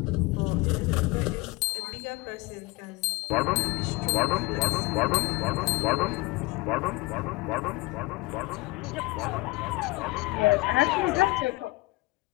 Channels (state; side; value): quieter; right; 22.2 dB